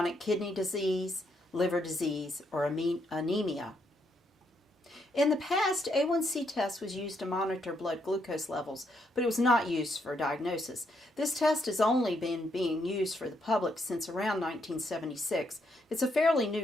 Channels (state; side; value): normal; both; correlation 0.76